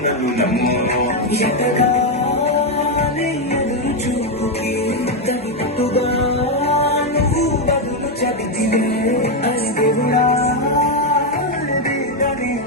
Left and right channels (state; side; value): normal; both; correlation 0.05